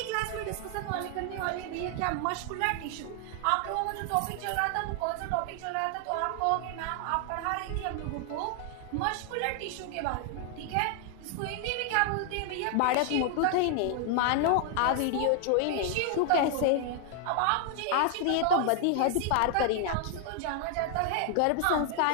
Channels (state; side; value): different; both; correlation 0.00